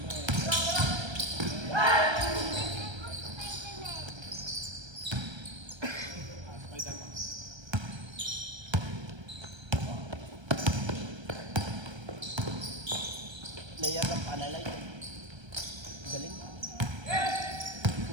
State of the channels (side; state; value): left; late; 1.3 ms